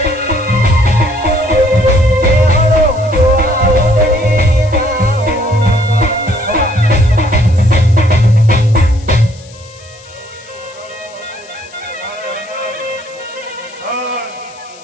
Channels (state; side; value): noise; left; hiss, 23 dB below the sound